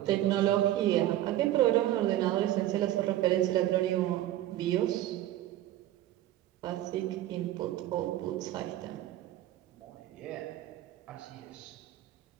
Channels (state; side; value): quieter; left; 13.9 dB